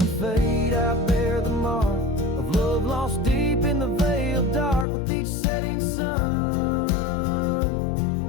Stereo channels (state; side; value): drops out; right; at 4.9 s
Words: fade I bear the mark of love lost deep in the veil dark. With each setting sun